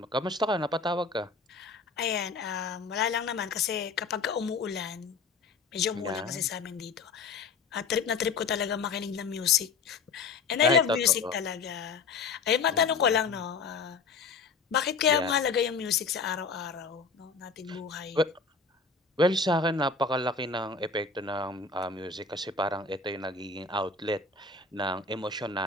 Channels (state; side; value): quieter; right; 4.5 dB